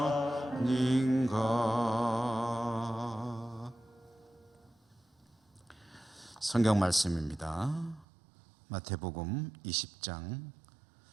아닌가. 성경 말씀입니다. 마태복음 20장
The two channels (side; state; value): left; drops out; at 8.1 s